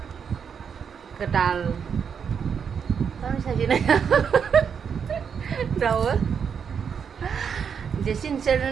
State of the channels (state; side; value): quieter; left; 7.0 dB